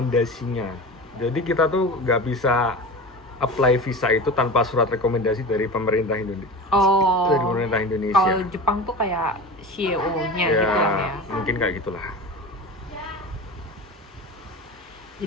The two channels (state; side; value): normal; both; correlation 0.30